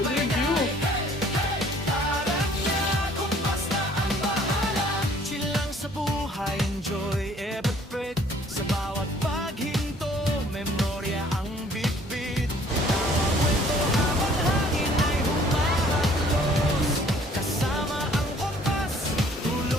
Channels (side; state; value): both; normal; correlation 0.57